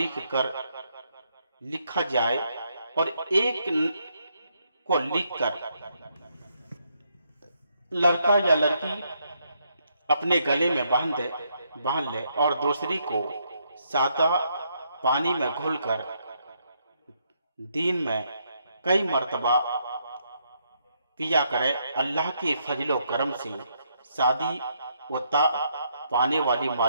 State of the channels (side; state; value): both; inverted; correlation -0.75